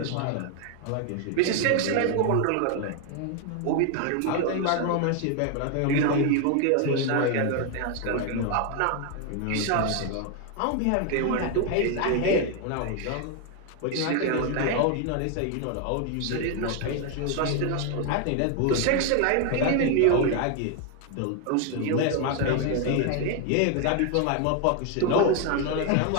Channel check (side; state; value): both; different; correlation 0.01